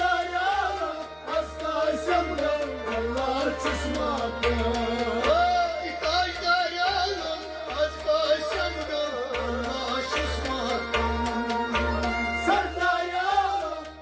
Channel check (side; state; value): both; identical; correlation 1.00